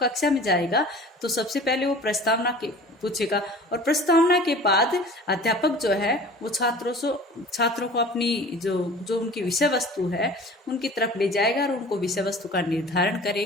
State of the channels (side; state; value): both; normal; correlation 0.43